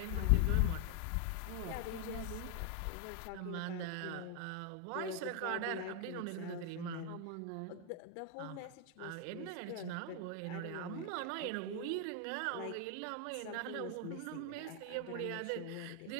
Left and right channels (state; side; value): different; both; correlation 0.00